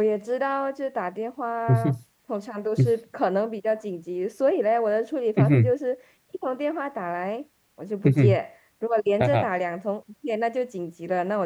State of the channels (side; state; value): both; identical; correlation 1.00